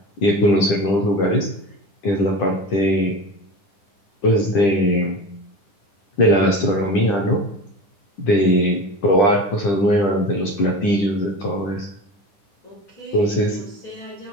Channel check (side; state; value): right; late; 10 ms